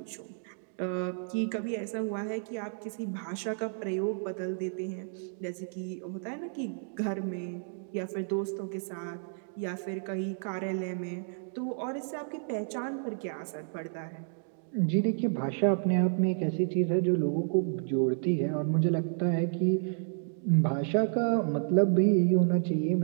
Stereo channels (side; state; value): left; silent; digital silence